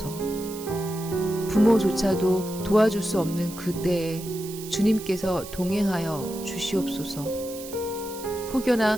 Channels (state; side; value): noise; right; hiss, 14 dB below the sound